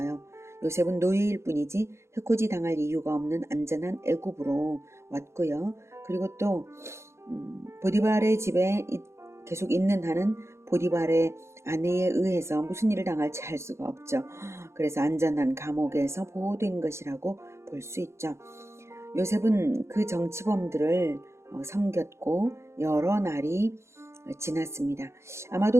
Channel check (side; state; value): left; late; 0.13 ms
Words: 요셉은 노예일 뿐이지 해코지 당할 이유가 없는 안전한 애굽으로 왔고요. 그리고 또 보디발의 집에 계속 있는 한은 보디발의 아내에 의해서 무슨 일을 당할지 알 수가 없죠. 그래서 안전한 감옥에서 보호된 것이라고 볼 수 있죠. 요셉은 그 정치범들을 섬겼고 여러 날이 지났습니다.